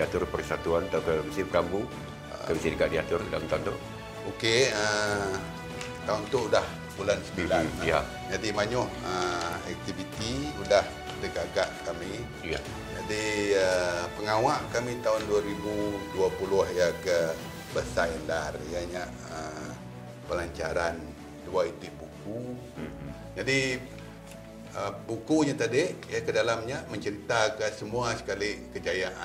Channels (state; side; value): identical; both; correlation 1.00